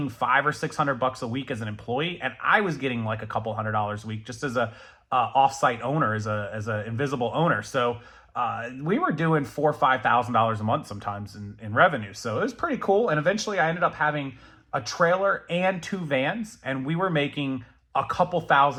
$500 or $600 a week as an employee. And I was getting like a couple $100 a week just as a offsite owner, as a invisible owner. So we were doing $4,000 or $5,000 a month sometimes in revenue. So it was pretty cool. And eventually I ended up having a trailer and 2 vans, and we were making a couple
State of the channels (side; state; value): both; identical; correlation 1.00